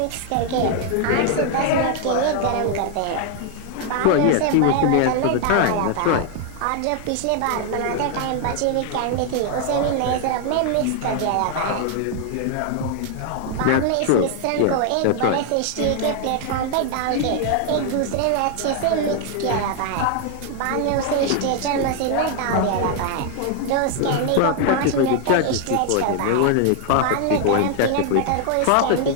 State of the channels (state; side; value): different; both; correlation 0.00